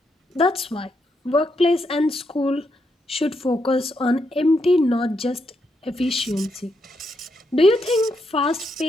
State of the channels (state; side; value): normal; both; correlation 0.80